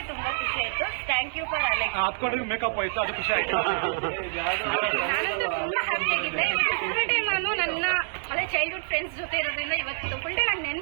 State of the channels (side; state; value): left; silent; 60 dB below the other